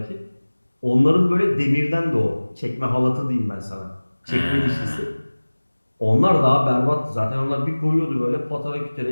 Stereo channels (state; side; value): inverted; both; correlation -1.00